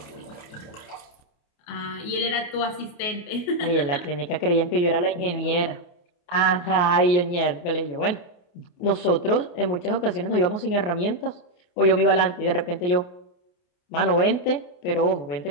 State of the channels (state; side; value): late; right; 28 ms